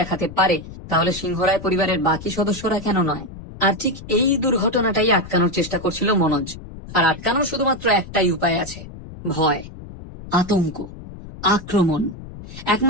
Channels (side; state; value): left; noise; rumble, 14 dB below the sound